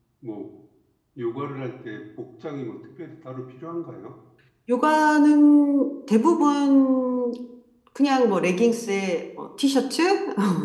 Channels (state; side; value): identical; both; correlation 1.00